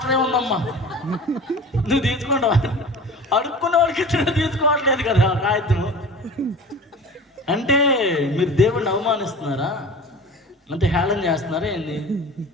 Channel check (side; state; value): both; normal; correlation 0.38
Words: ఉందమ్మా. నువ్వు తీసుకుంటావా? అడుక్కున్న వాళ్ళకి ఇచ్చిన తీసుకోవట్లేదు కదా కాగితం. అంటే మీరు దేవుడిని అవమానిస్తున్నారా? అంటే హేళన చేస్తున్నారా ఏంది?